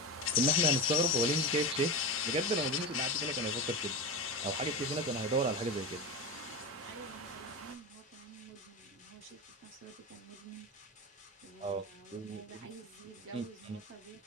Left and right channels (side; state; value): both; normal; correlation 0.22